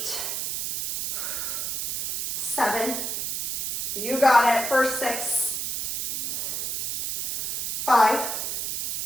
7, you got it, for 6, 5,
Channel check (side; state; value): right; noise; hiss, 2 dB below the sound